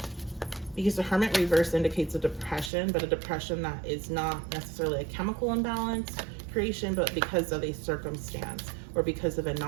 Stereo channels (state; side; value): drops out; left; at 2.7 s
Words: Because the Hermit reverse indicates a depression, but a depression that is not necessarily a chemical imbalance creation, but because of a circumstance or because of a